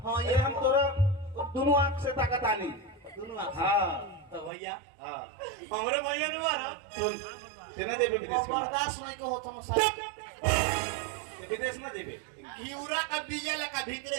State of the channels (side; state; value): left; drops out; at 4.5 s